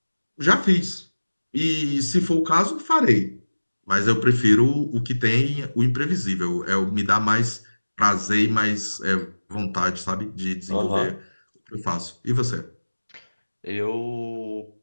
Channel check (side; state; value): both; inverted; correlation -1.00